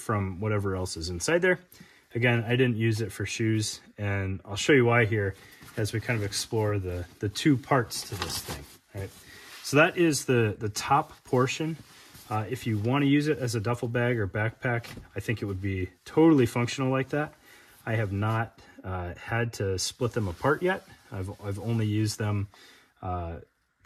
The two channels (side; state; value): both; identical; correlation 1.00